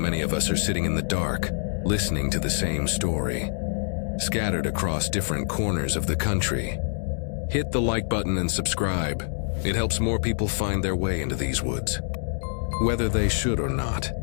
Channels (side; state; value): right; silent; digital silence